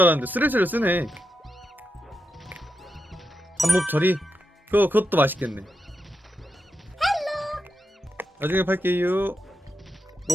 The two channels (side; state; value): both; normal; correlation 0.87